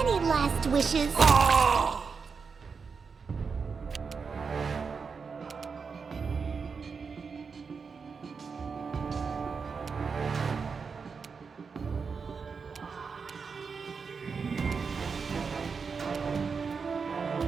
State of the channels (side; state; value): left; quieter; 5.4 dB